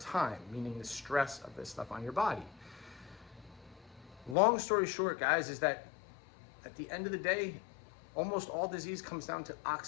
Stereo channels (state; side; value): drops out; right; at 4.4 s